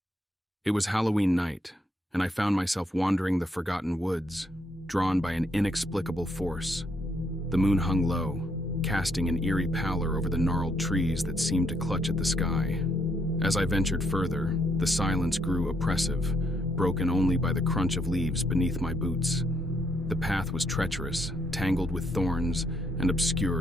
It was Halloween night, and I found myself wandering the forgotten woods, drawn by an inexplicable force. The moon hung low, casting an eerie pallor over the gnarled trees that seemed to clutch at the sky. As I ventured further, the silence grew oppressive, broken only by the crunch of leaves beneath my boots. The path was treacherous, tangled with thorns, and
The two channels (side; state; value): both; normal; correlation 0.74